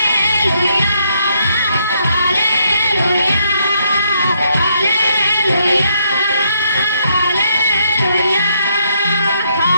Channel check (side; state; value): both; inverted; correlation -0.74